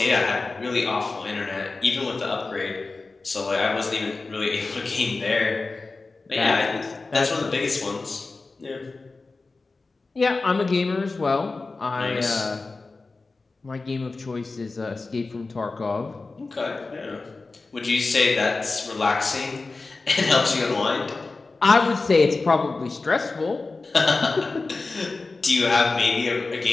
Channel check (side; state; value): right; quieter; 3.7 dB